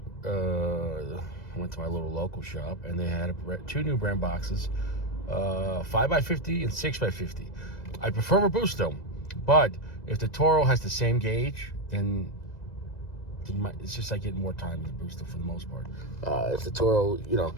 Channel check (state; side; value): late; right; 2.0 ms